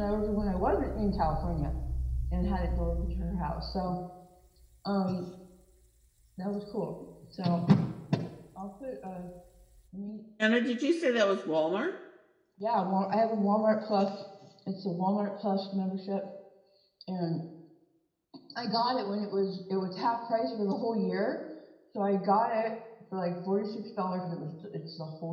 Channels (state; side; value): identical; both; correlation 1.00